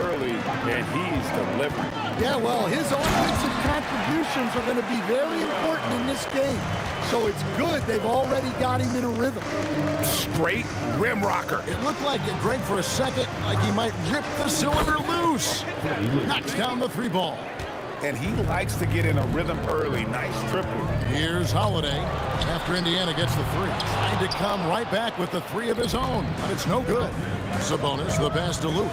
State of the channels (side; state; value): both; identical; correlation 1.00